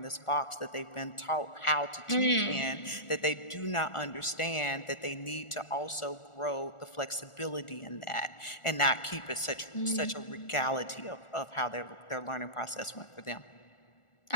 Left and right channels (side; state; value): right; late; 1.4 ms